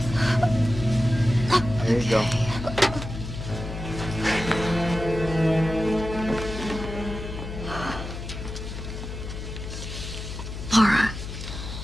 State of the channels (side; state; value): left; noise; hum, 8 dB below the sound